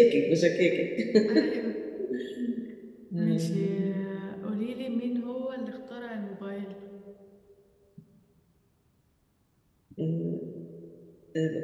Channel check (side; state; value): both; identical; correlation 1.00